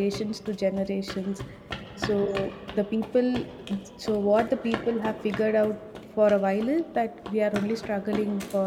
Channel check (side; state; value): both; identical; correlation 1.00